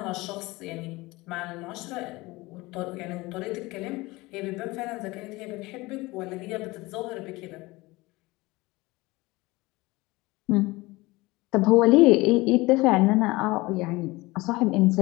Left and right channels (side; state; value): right; quieter; 21.5 dB